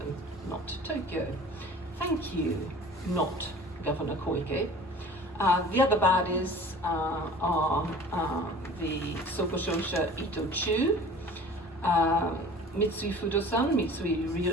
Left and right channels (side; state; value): both; normal; correlation 0.44